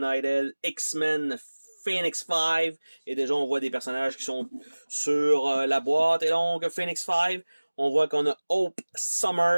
X-Men Phoenix 5. Et déjà, on voit des personnages qui sont sur la boîte. Et donc, Phoenix 5, on voit qu'on a Hope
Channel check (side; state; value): both; inverted; correlation -1.00